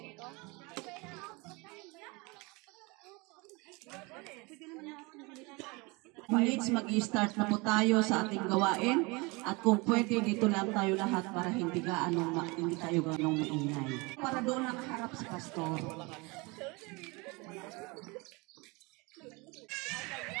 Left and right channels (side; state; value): left; quieter; 26.6 dB